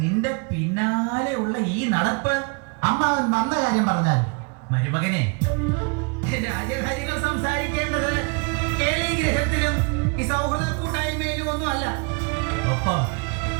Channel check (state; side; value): quieter; left; 33.3 dB